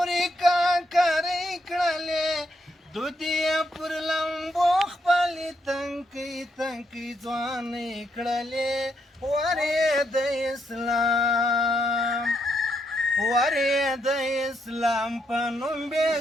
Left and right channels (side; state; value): both; normal; correlation 0.78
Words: کاکرې کړلې دودې پر لمبو خپلې تنکۍ تنکۍ ځوانې کړلې ورې د اسلام ورې د اسلام په نوم بې